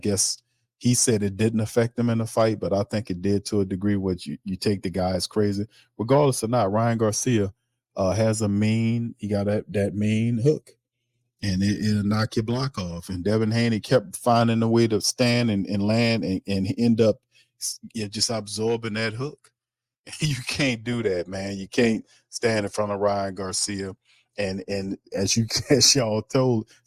he said it didn't affect him in the fight, but I think it did to a degree where you take the guy as crazy. Regardless or not, Ryan Garcia has he got that mean hook, and it'll knock your block off. And Devin Haney kept finding a way to stand and land and end up you're just absorbing that hook. You can't do that, man. You can't stand in front of Ryan Garcia and as y'all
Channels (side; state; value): both; identical; correlation 1.00